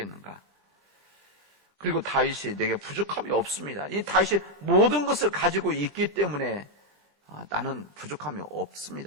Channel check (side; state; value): both; normal; correlation 0.02